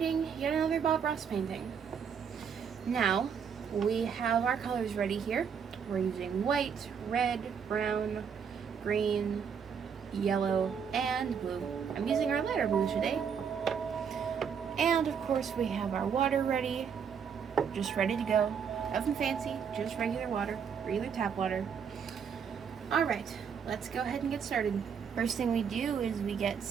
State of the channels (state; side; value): quieter; left; 7.0 dB